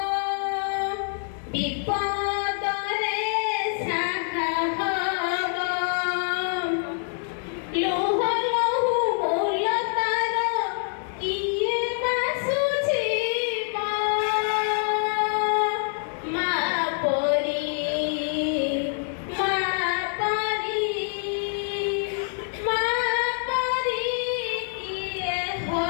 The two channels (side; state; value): right; silent; 60 dB below the other